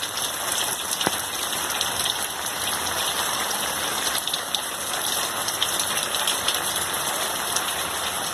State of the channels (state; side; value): identical; both; correlation 1.00